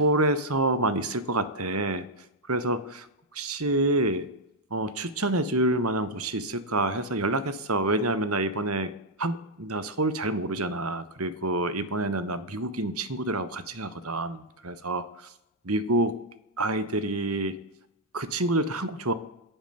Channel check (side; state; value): both; normal; correlation -0.02